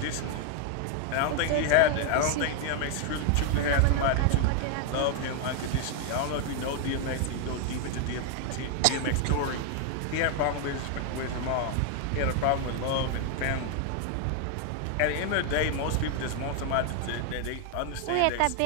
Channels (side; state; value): both; different; correlation 0.00